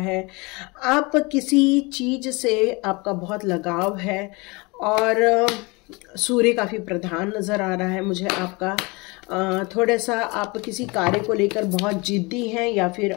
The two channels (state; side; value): quieter; right; 26.6 dB